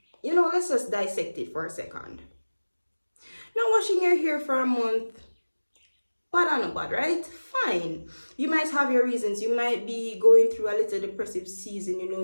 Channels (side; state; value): both; inverted; correlation -1.00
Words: You know, let's just dissect it for a second. Not washing your hair for a month, bad or no bad, right? Fine. You might have your reasons. You might be going through a little depressive season, you know,